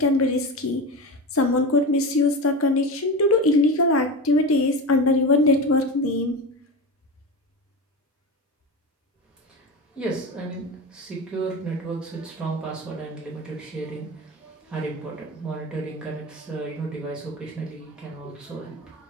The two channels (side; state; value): both; normal; correlation 0.24